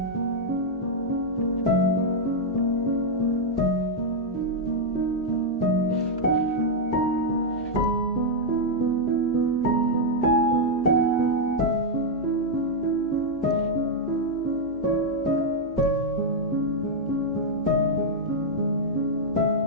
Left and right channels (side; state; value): both; normal; correlation -0.03